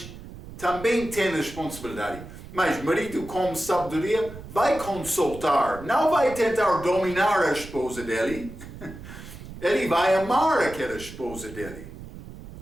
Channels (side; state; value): right; noise; rumble, 14 dB below the sound